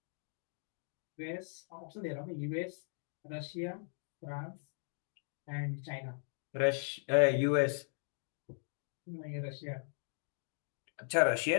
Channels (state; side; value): silent; right; digital silence